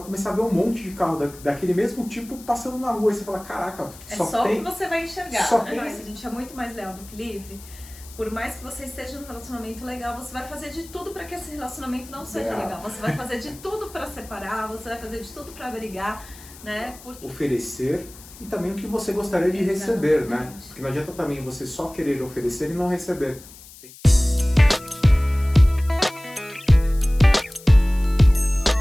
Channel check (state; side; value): noise; left; hiss, 19 dB below the sound